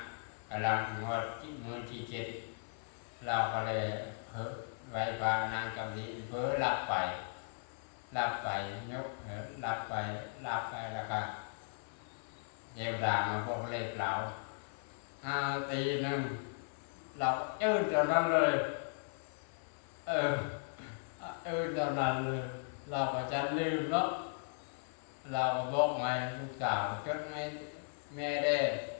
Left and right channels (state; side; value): silent; right; 53 dB below the other